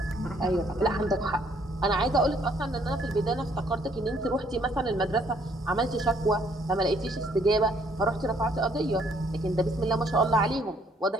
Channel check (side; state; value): both; normal; correlation 0.65